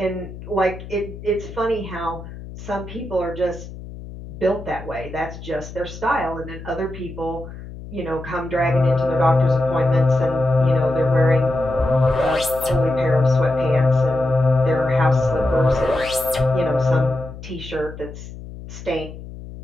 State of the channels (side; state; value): left; noise; hum, 13 dB below the sound